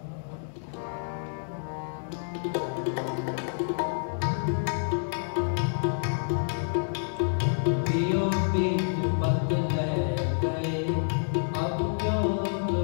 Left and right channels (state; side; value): silent; right; digital silence